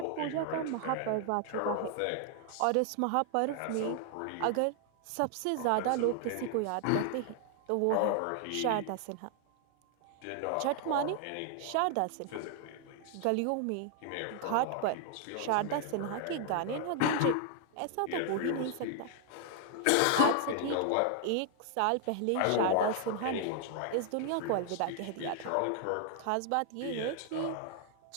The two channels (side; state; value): both; different; correlation 0.00